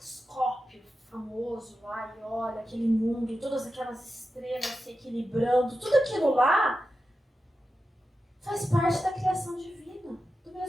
famoso lá e olha aquele mundo, todas aquelas estrelas se equilibrando, tudo aquilo lá faz parte da criação divina, do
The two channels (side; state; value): both; normal; correlation 0.91